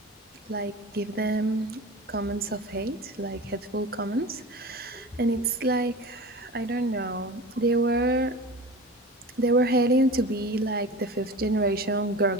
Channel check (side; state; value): both; normal; correlation 0.33